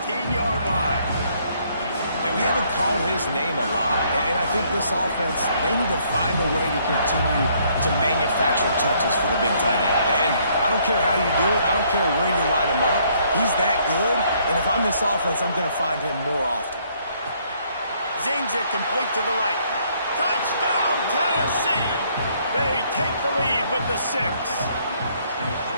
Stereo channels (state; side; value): inverted; both; correlation -0.67